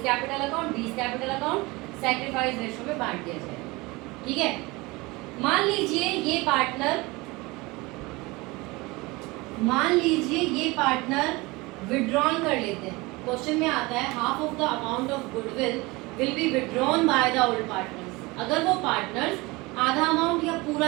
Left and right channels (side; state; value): left; quieter; 23.4 dB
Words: capital account, B's capital account, sacrifice ratio में बांट दिया जाएगा। ठीक है, मान लीजिए ये पार्टनर विड्रॉन कर लेते हैं। क्वेश्चन में आता है half of the amount of goodwill will be withdrawn by the old partners. अगर वो पार्टनर्स आधा अमाउंट या पूरा